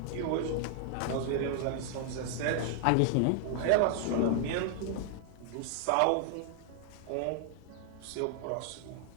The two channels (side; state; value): both; different; correlation 0.00